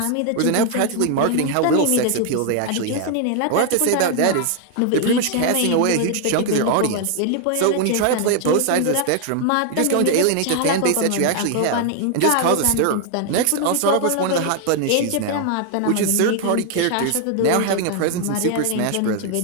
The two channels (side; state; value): both; different; correlation 0.00